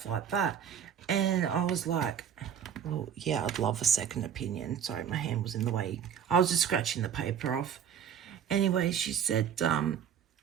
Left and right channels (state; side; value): quieter; left; 8.5 dB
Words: like that? And I was like, well, yeah, I'd love a second opinion. Sorry, my hand was in the way. I was just scratching the paper off. Anyway, she said,